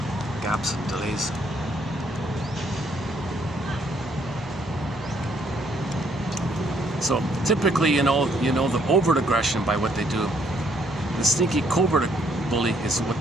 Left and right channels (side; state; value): both; normal; correlation 0.68